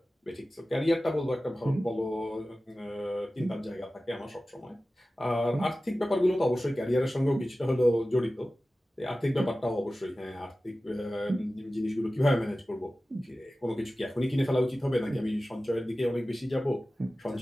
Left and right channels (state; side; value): normal; both; correlation 0.96